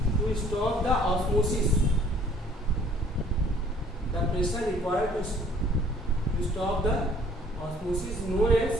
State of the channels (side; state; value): both; normal; correlation 0.57